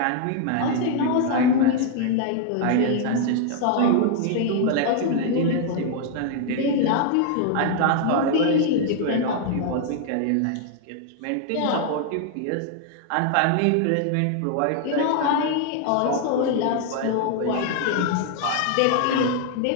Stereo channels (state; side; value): different; both; correlation 0.00